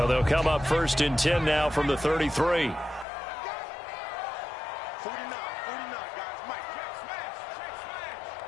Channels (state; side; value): drops out; right; at 3.1 s